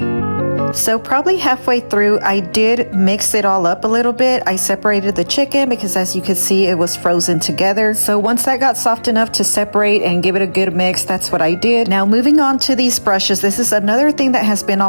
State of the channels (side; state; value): both; inverted; correlation -1.00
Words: So probably halfway through, I did mix it all up a little bit. I separated the chicken because, as you can see, it was frozen together. So once that got soft enough to separate and give it a good mix, that's what I did. Now moving on to these brushes, this is another thing that has been